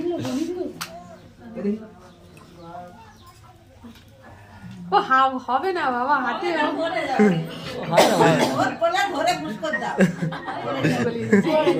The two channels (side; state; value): both; identical; correlation 1.00